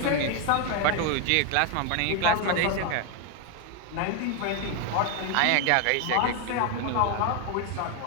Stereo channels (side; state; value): both; different; correlation 0.01